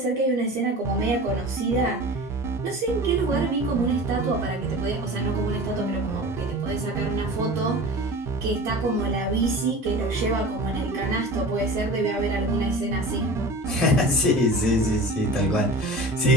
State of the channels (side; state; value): both; normal; correlation 0.36